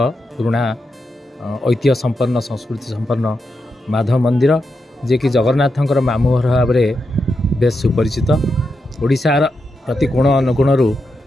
पुराना ऐतिह्य संपन्न संस्कृति संपन्न माधव मंदिर जे कि जगन्नाथंकर मामू घर भाव में बेस सुपरिचित। ओडिशार प्रति कोण अनुकोण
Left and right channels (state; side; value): normal; both; correlation 0.86